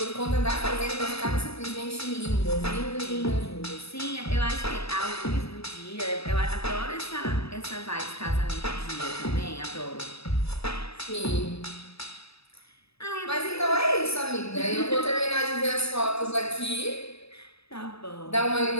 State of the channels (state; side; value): late; right; 0.78 ms